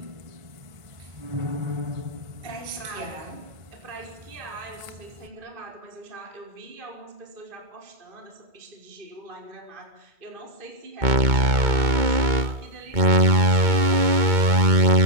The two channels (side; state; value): left; late; 2.2 ms